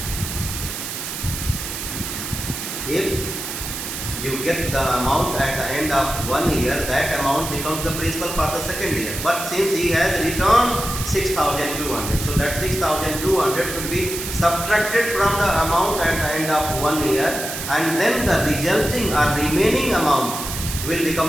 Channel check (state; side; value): noise; right; hiss, 6 dB below the sound